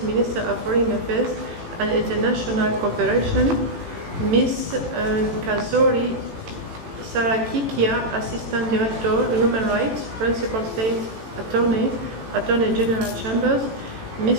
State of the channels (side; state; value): left; late; 18 ms